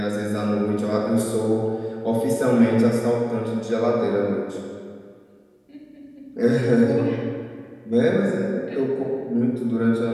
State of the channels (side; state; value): both; identical; correlation 1.00